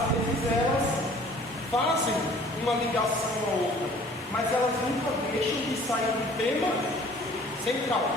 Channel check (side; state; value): both; normal; correlation 0.52